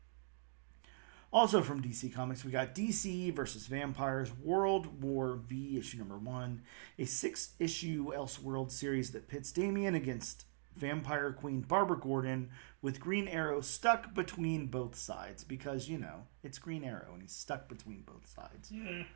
Also from DC Comics, we got DC vs. Vampires World War V, issue number 1, a 6-issue Elseworld series that pits Damian against Vampire Queen Barbara Gordon, with Green Arrow stuck between both sides, because, you know, it's Green Arrow and he's stuck between both sides. Yeah.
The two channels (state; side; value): silent; left; digital silence